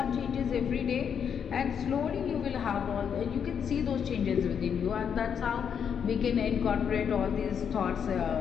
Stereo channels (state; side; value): quieter; right; 7.6 dB